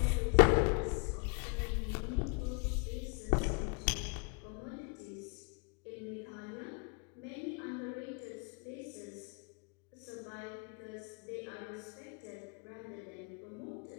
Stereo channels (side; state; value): right; quieter; 33.8 dB